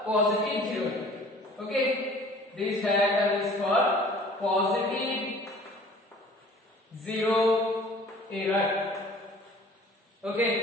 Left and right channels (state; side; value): normal; both; correlation 0.49